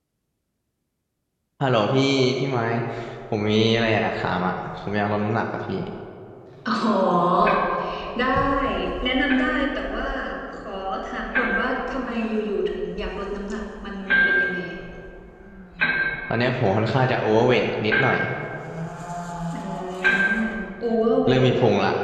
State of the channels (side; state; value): both; identical; correlation 1.00